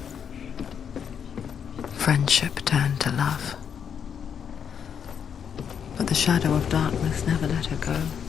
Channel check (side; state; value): right; quieter; 7.7 dB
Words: Friendship turned to love. But the shadow of darkness never let her go,